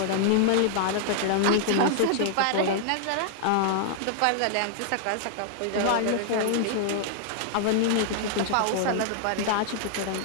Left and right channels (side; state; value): both; different; correlation -0.01